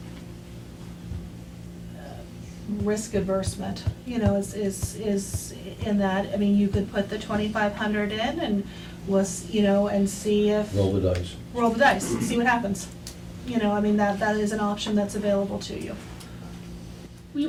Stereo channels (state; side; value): identical; both; correlation 1.00